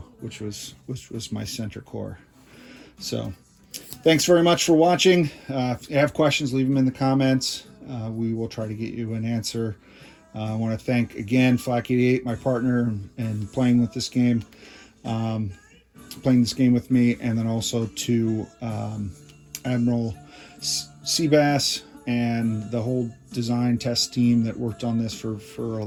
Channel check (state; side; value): identical; both; correlation 1.00